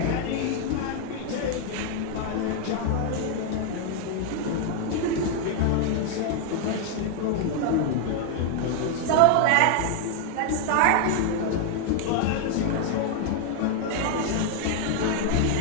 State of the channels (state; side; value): different; both; correlation 0.00